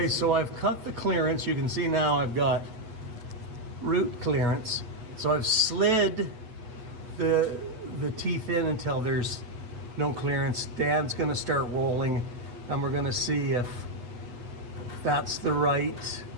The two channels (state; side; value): late; left; 8.5 ms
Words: so I've cut the clearance. You can see now I've got root clearance. So I've slid the teeth in until there's no clearance. Dan's going to start rolling, and we're going to see if that's the right